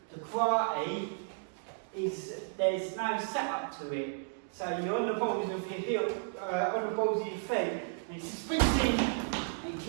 The karate there's no setup to it, so you're on the balls of your heel, on the balls of your feet, and it spins in and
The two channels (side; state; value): left; silent; digital silence